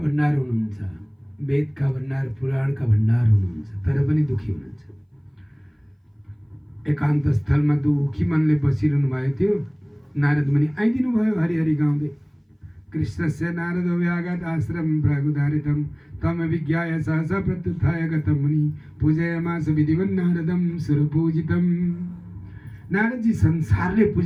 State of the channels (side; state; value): both; identical; correlation 1.00